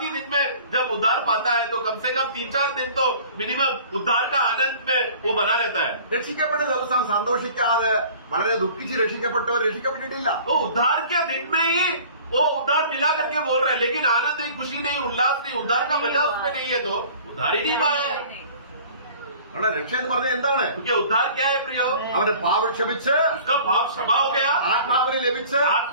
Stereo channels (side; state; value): both; inverted; correlation -0.47